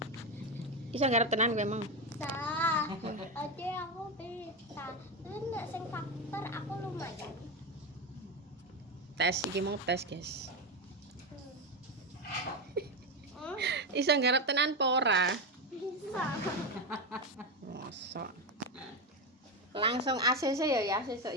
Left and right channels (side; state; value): both; normal; correlation 0.13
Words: Iso nggarap tenan kowe emang. Bisa. Oke, aku bisa. Terus nek sing faktor aku lumayan. Tes iki mau tes, guys. Iso nggarap tenan apa ora? Bisa. Mosok. Langsung ACC ya sesuk